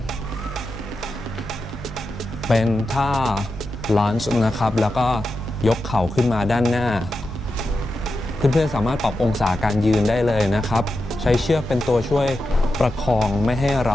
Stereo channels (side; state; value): both; normal; correlation 0.89